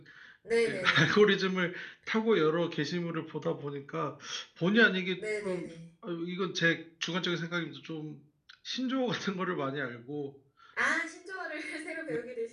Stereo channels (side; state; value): both; identical; correlation 1.00